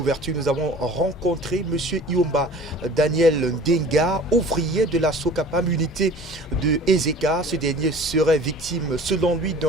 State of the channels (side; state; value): both; normal; correlation 0.44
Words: nous avons rencontré M. Iomba Daniel Ndenga, ouvrier de la Sokapam, unité de Ezeka. Ce dernier serait victime, selon lui,